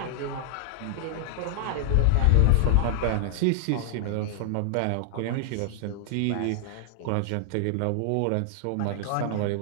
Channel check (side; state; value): both; different; correlation -0.01